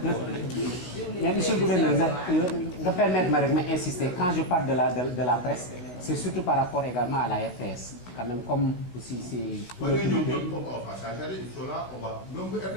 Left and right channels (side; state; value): right; late; 16 ms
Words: mais monsieur le gouverneur nga permettre ma rek ma insister quand je parle de la presse c'est surtout par rapport également à la RTS quand même comme aussi c'est.